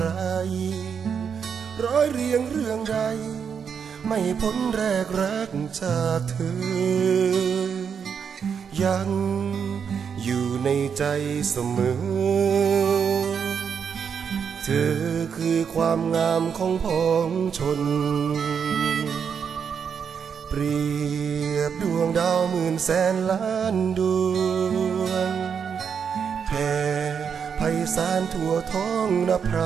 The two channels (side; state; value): left; quieter; 6.9 dB